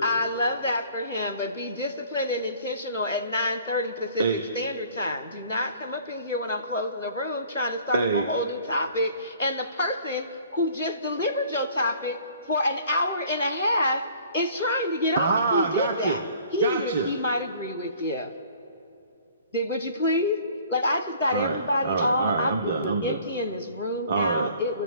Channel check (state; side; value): inverted; both; correlation -0.52